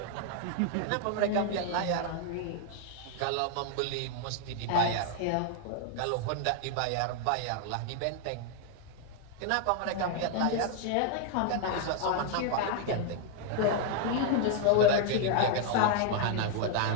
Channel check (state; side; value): different; both; correlation 0.00